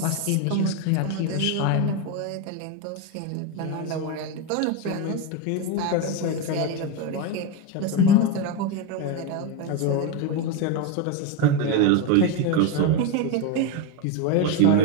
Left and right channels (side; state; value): both; different; correlation 0.04